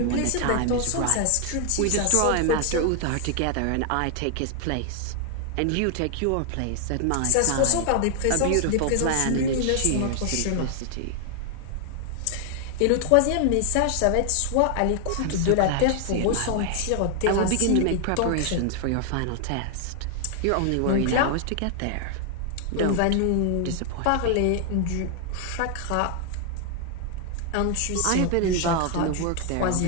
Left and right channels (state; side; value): different; both; correlation 0.00